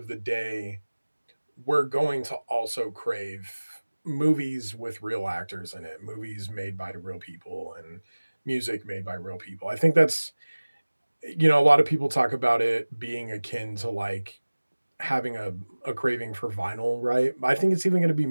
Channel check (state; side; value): inverted; both; correlation -1.00